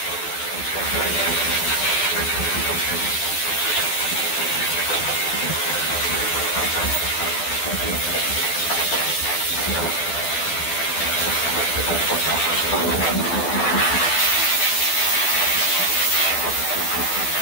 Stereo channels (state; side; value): late; right; 12 ms